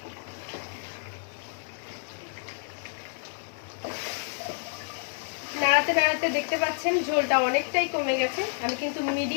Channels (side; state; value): right; silent; 59 dB below the other